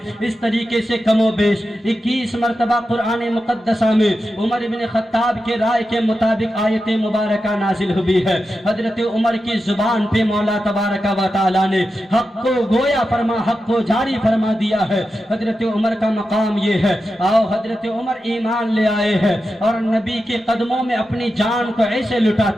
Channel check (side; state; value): both; normal; correlation 0.90